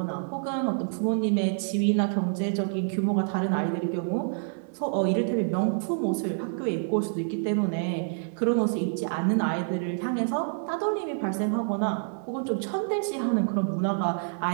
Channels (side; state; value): left; silent; 60 dB below the other